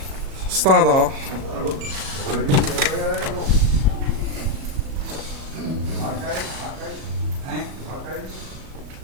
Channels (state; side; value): late; left; 37 ms